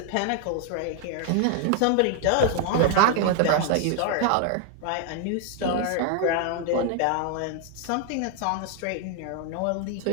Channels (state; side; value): different; both; correlation 0.00